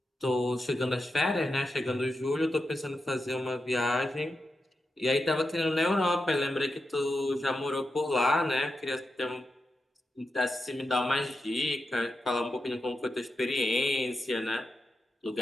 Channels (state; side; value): normal; both; correlation 0.88